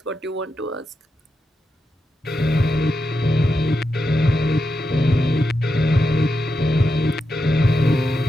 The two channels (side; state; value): both; normal; correlation 0.87